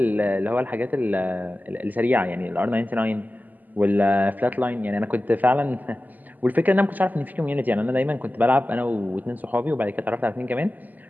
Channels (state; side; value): late; left; 0.083 ms